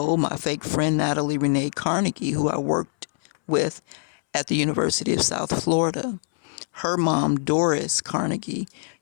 My fake friend Natalie Renee Carnegie, who I worked with at the University of South Florida. Her mom, Doris Carnegie,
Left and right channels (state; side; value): silent; right; 63 dB below the other